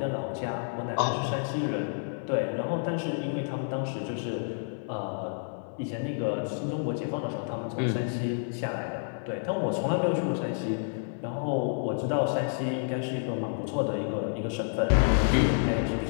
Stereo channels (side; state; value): right; silent; 58 dB below the other